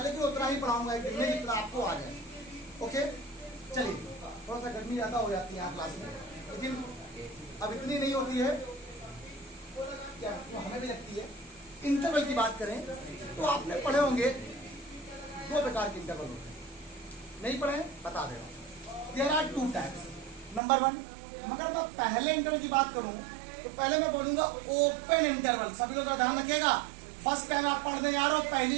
लेकिन उतना ही पढ़ाऊंगा एक दिन में जितना आपको आ जाए। ओके चलिए, थोड़ा सा गर्मी ज्यादा हो जाती है यहाँ क्लास में, लेकिन अब इतनी नहीं होती है, क्या तो हमें भी लगती है। इंटरवल की बात करें तो आपने पढ़े होंगे दो प्रकार के इंटरवल होते हैं। नहीं पढ़े बता दे रहा हूं। There are two types. Number one, मगर मैं पहले इंटरवल की बात करूं तो पहले मैं बोलूंगा ओपन इंटरवल। सभी लोग ध्यान रखिएगा, फर्स्ट टाइम आप पढ़ने जा रहे हो,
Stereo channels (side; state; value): left; drops out; at 20.6 s